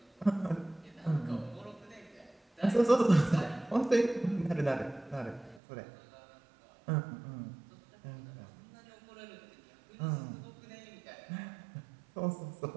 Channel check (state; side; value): drops out; left; at 5.6 s